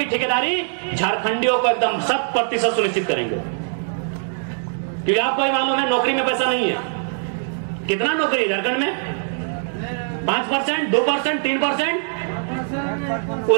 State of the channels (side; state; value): left; silent; digital silence